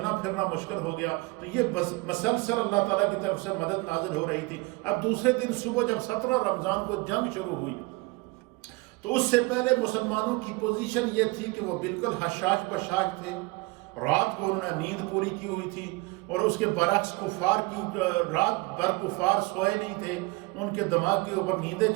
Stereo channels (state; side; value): quieter; left; 24.5 dB